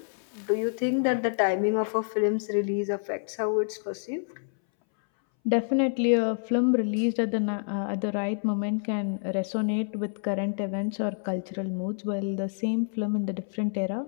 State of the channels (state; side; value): silent; right; 60 dB below the other